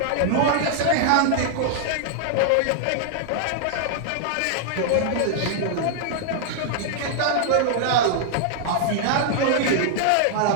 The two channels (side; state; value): both; different; correlation -0.01